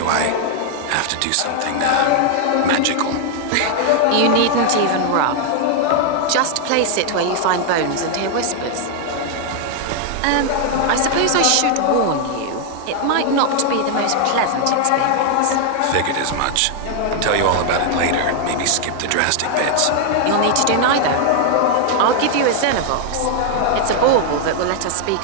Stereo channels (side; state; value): both; different; correlation 0.00